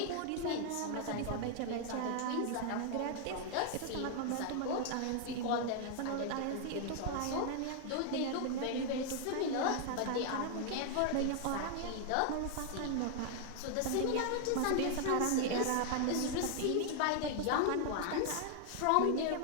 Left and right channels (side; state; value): both; different; correlation 0.00